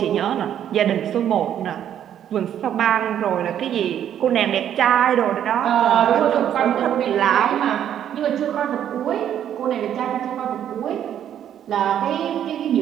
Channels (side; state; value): left; quieter; 10.1 dB